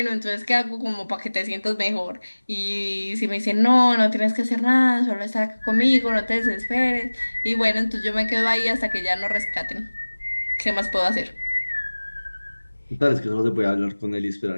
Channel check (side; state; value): both; inverted; correlation -1.00